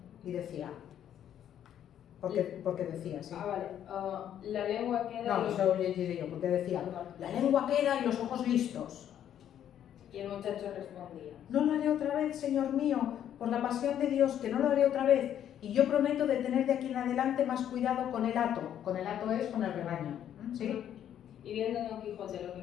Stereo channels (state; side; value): quieter; right; 10.2 dB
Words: I decía, porque decía, sí. Vale. La lengua queda... No, eso lo llegiré yo, porque decía, la lengua queda y los ojos listos. Y el muchacho respondía: No lo haré otra vez, Señor mío, por la pasión de Dios, que no lo haré otra vez. Y yo prometo de tener de aquí en adelante más cuidado con el hato. Con el hato es con el rebaño. ¿Sí? Y viendo Don Quijote lo que